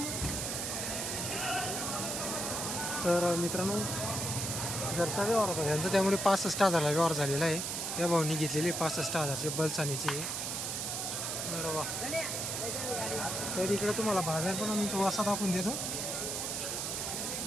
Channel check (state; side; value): noise; right; hiss, 2 dB below the sound